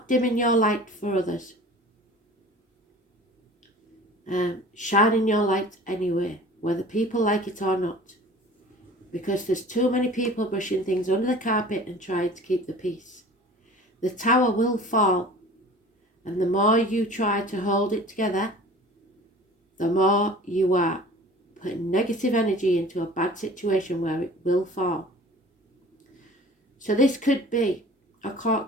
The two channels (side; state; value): both; normal; correlation 0.44